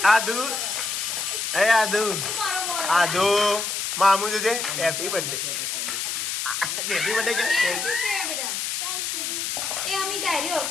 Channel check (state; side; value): noise; left; hiss, 2 dB below the sound